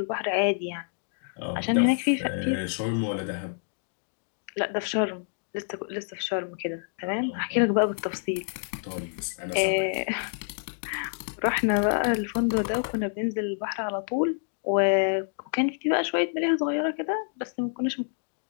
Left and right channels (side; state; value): right; silent; digital silence